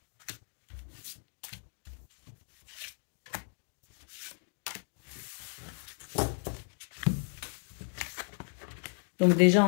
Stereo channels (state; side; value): silent; right; digital silence